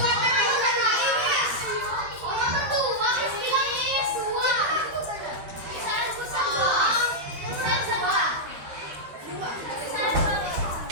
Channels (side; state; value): left; late; 12 ms